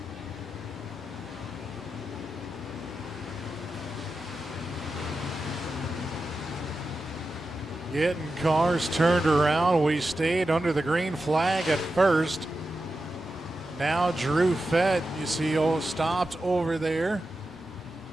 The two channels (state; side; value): normal; both; correlation 0.91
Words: Getting cars turned around. We stayed under the green flag at first. Now Drew Fett, you see, stopped over there.